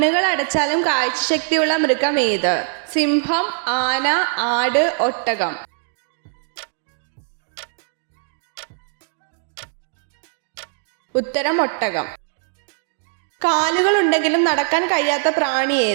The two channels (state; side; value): silent; left; digital silence